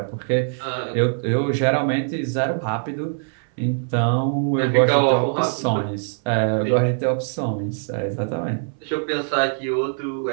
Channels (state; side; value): silent; left; 59 dB below the other